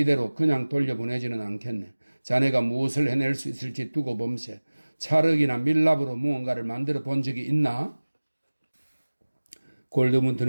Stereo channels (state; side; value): inverted; both; correlation -1.00